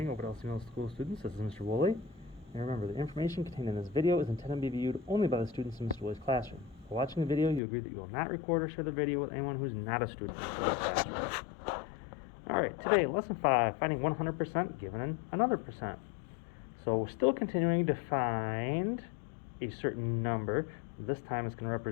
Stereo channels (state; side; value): drops out; right; at 7.6 s